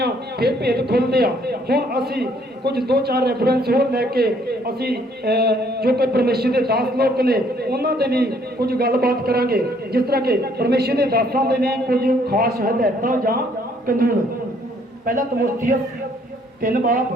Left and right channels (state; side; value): normal; both; correlation 0.65